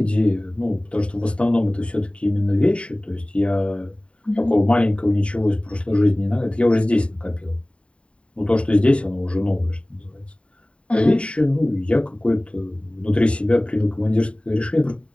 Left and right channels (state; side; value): late; right; 0.059 ms